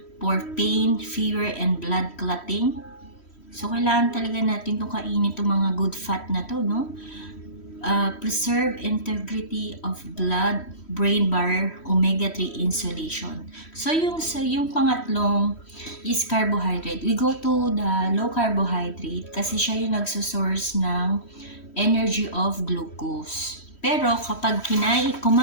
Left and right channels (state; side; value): late; right; 3.1 ms